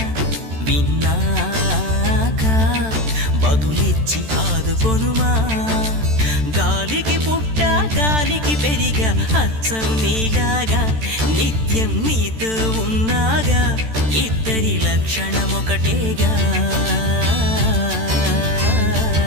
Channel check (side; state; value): left; late; 13 ms